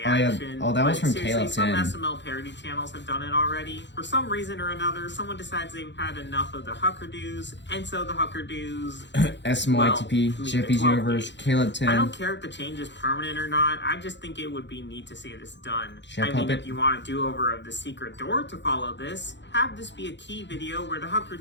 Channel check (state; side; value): late; right; 0.52 ms